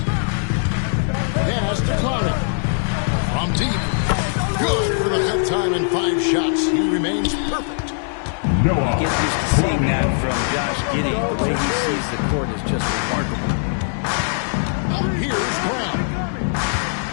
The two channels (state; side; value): silent; right; 65 dB below the other